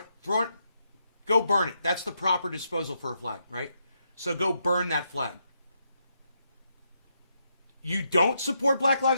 go burn it. That's the proper disposal for a flag, right? So go burn that flag. You don't support Black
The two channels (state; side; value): inverted; both; correlation -0.80